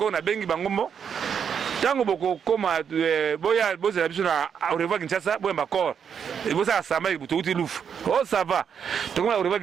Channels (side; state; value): left; quieter; 7.4 dB